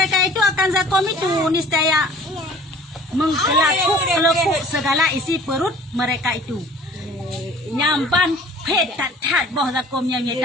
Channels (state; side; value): normal; both; correlation 0.49